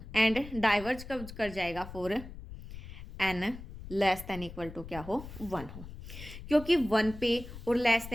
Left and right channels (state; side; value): noise; left; rumble, 13 dB below the sound